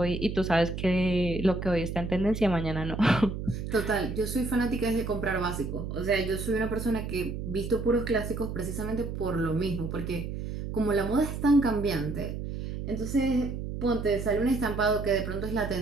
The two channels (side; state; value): right; noise; hum, 6 dB below the sound